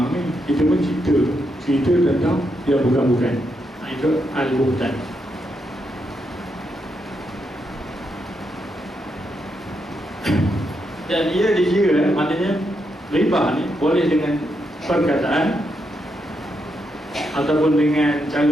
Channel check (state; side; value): normal; both; correlation 0.81